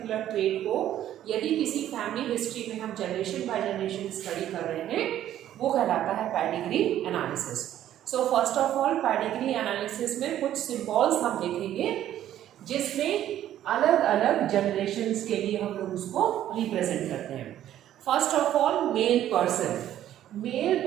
ट्रेड को, यदि किसी फैमिली हिस्ट्री में हम जनरेशन बाय जनरेशन स्टडी कर रहे हैं, वो कहलाता है pedigree analysis. So first of all pedigree analysis में कुछ सिंबल्स हम देखेंगे जिसमें अलग अलग जनरेशन्स के लिए हम लोग उसको रिप्रेजेंट करते हैं। First of all male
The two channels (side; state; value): left; quieter; 11.9 dB